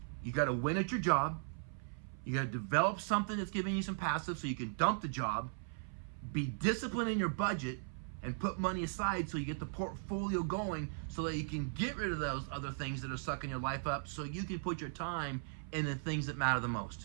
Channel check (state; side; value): silent; left; 53 dB below the other